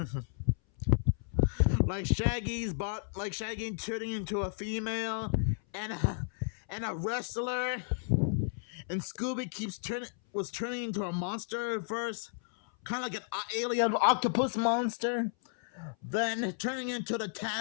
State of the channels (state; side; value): silent; right; 56 dB below the other